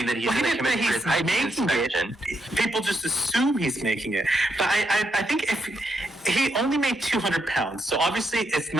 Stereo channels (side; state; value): both; normal; correlation 0.81